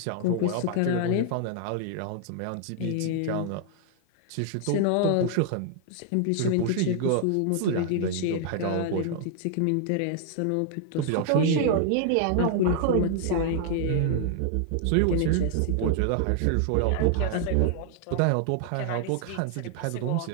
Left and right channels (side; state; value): both; different; correlation 0.00